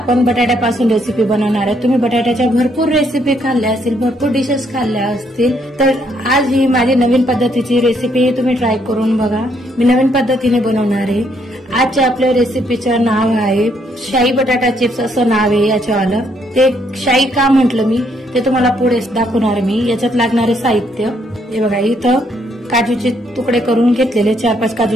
बटाट्यापासून रेसिपी बनवणार आहे। तुम्ही बटाट्याच्या भरपूर रेसिपी खाल्ल्या असतील, भरपूर डिशेस खाल्ल्या असतील, तर आज ही माझी नवीन पद्धतीची रेसिपी तुम्ही ट्राय करून बघा। मी नवीन पद्धतीने बनवणार आहे। आजच्या आपल्या रेसिपीचं नाव आहे शाही बटाटा चिप्स असं नाव आहे याच्यावालं। ते शाही का म्हटलं मी ते तुम्हाला पुढे दाखवणार मी। याच्यात लागणारे साहित्य हे बघा, इथं काजूचे तुकडे करून घेतलेले 4-5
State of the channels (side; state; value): both; normal; correlation 0.71